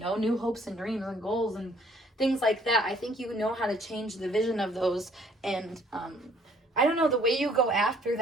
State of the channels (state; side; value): normal; both; correlation 0.61